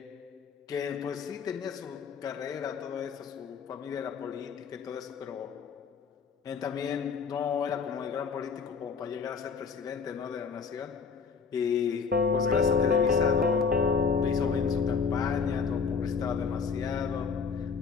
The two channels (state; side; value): quieter; right; 5.7 dB